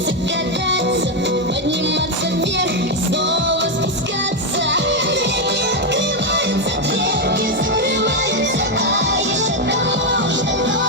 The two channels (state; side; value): normal; both; correlation 0.05